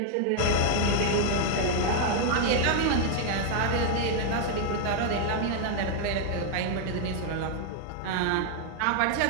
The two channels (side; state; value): both; different; correlation 0.00